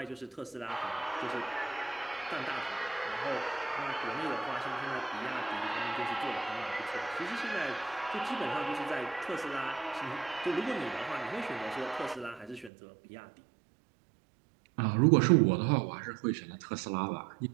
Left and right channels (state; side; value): drops out; left; at 12.7 s